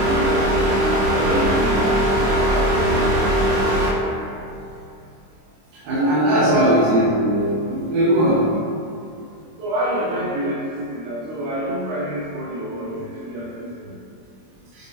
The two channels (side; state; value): left; late; 26 ms